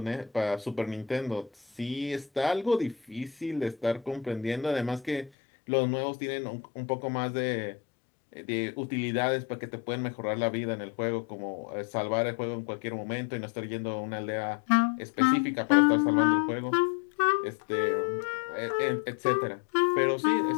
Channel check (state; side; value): drops out; right; at 5.3 s